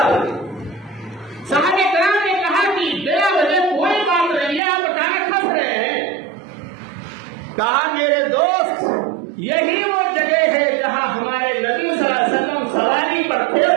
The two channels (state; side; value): drops out; left; at 4.6 s